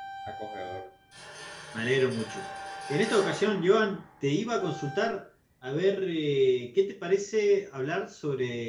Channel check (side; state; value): both; identical; correlation 1.00